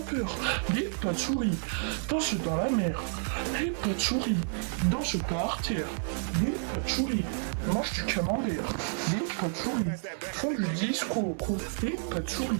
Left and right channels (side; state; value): left; silent; 58 dB below the other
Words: Les patchouris dansent dans la mer. Les patchouris dansent par terre. Les patchouris mangent du camembert. Les patchouris font du disco. Les patchouris